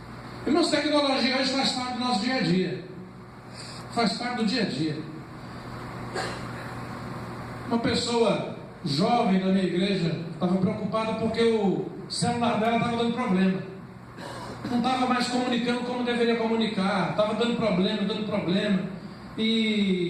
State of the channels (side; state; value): both; identical; correlation 1.00